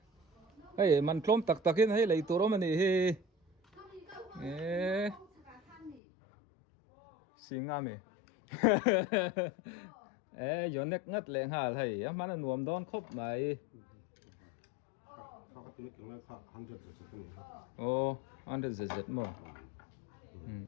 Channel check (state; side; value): drops out; right; at 6.0 s